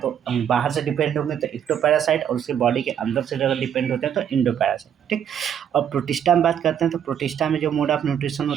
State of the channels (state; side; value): quieter; left; 9.1 dB